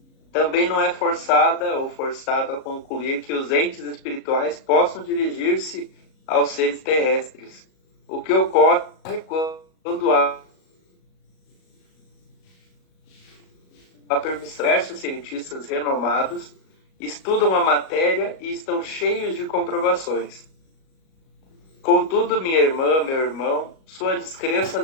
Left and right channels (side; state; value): right; late; 37 ms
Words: Também não é forçada ou forçado a concluir que os entes espirituais possam dirigir-se aos seres terrestres, o que ocorre quando há a permissão. Diversos cientistas renomados estudam a matéria e estão cheios de comprovações. Contudo, minha irmã, meu irmão, sua descrença